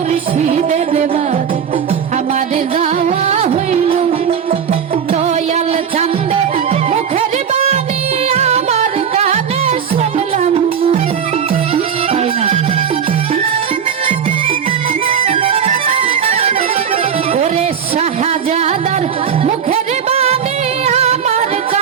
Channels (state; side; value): quieter; left; 7.6 dB